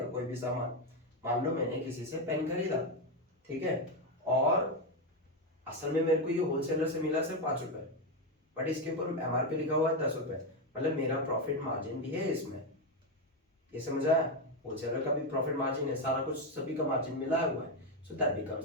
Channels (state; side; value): normal; both; correlation 0.08